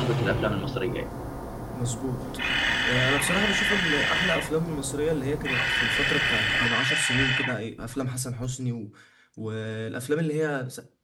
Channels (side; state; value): both; identical; correlation 1.00